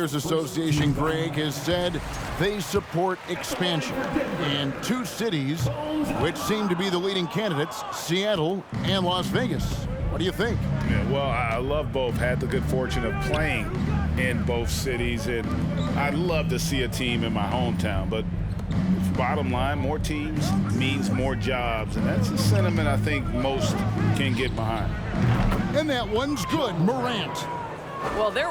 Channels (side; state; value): both; identical; correlation 1.00